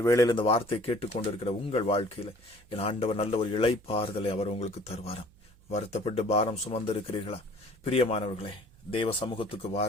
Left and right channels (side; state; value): right; noise; hum, 27 dB below the sound